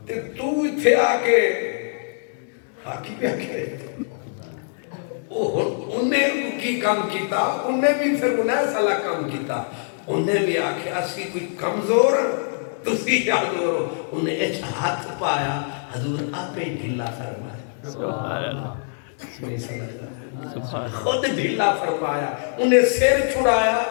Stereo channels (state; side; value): silent; right; digital silence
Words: تے تو اتھے آکے حاکی پہ آکے انہیں کی کام کیتا انہیں بھی پھر انہیں سالا کام کیتا انہیں بھی آکے اسی کوئی کمزور تسی حضور انہیں ایچ ہاتھ پایا حضور آپ ہی ڈھلا فرمایا سبحان اللہ خود ڈھلا فرمایا انہیں سیر چھڑایا